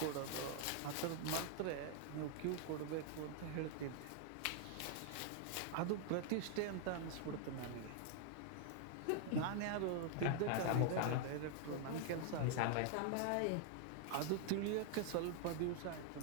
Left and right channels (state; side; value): different; both; correlation 0.00